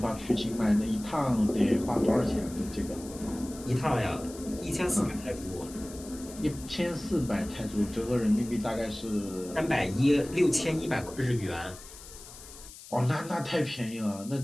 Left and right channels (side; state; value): left; noise; hiss, 16 dB below the sound